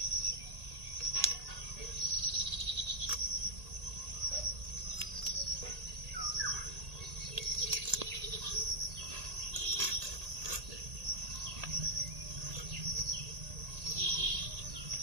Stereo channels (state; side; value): late; left; 1.8 ms